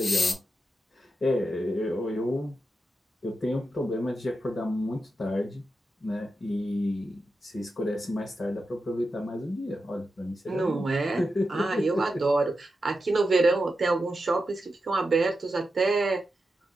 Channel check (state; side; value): normal; both; correlation 0.89